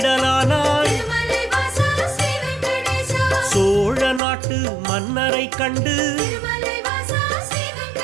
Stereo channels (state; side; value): drops out; left; at 4.2 s